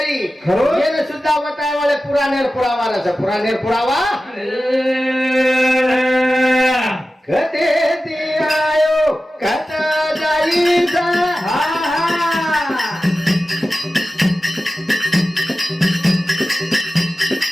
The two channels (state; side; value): normal; both; correlation 0.95